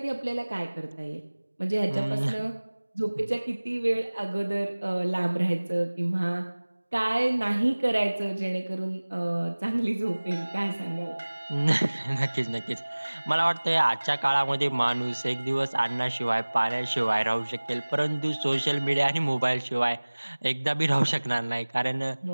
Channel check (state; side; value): inverted; both; correlation -1.00